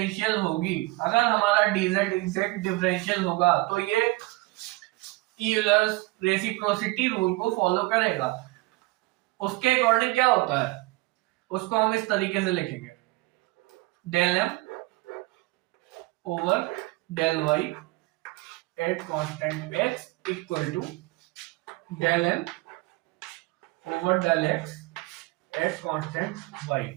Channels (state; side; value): quieter; left; 22.3 dB